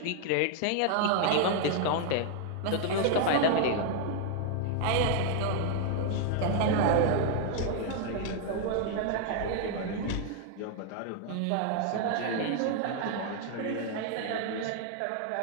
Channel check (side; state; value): both; different; correlation 0.00